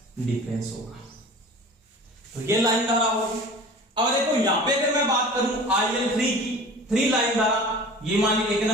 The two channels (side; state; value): both; normal; correlation 0.40